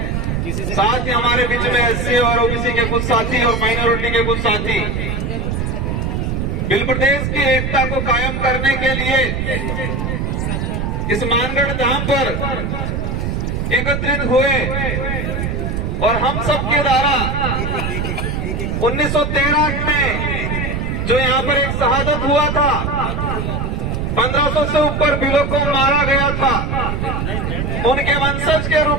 साथ ही हमारे बीच में एससी और ओबीसी के कुछ साथी और माइनॉरिटी के कुछ साथी बिल प्रदेश की एकता को कायम करने के लिए इस मानगढ़ धाम पर एकत्रित हुए और हम सब के द्वारा 1913 में जो यहाँ पर एक शहादत हुआ था, 1500 से ऊपर बिलों को मारा गया था, उनके वंशज के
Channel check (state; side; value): noise; right; rumble, 1 dB below the sound